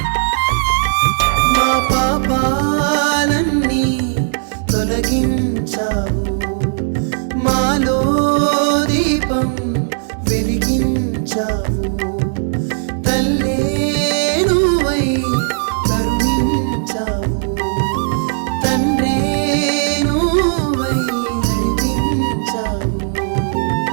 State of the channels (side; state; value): left; silent; digital silence